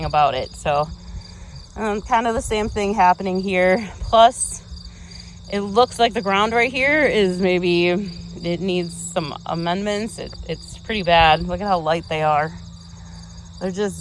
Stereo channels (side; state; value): both; identical; correlation 1.00